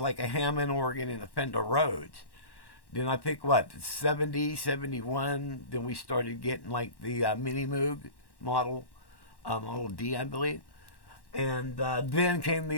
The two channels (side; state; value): right; late; 1.1 ms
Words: a Hammond organ and a Fender Rhodes. Then I think 70, 71, then we started getting like the Mini Moog model, Model D, I believe. And then came